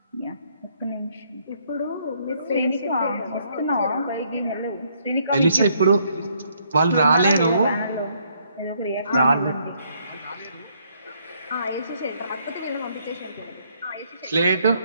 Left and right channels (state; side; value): inverted; both; correlation -0.69